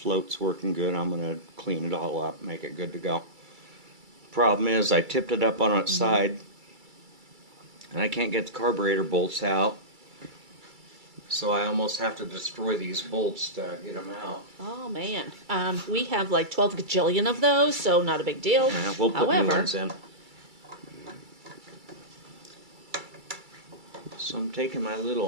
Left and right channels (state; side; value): late; left; 2.3 ms